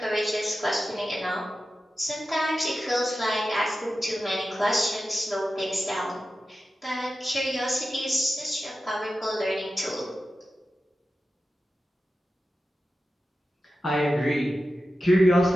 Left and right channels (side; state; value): both; normal; correlation 0.93